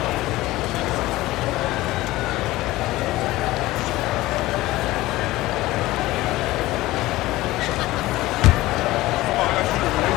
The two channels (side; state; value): right; quieter; 17.9 dB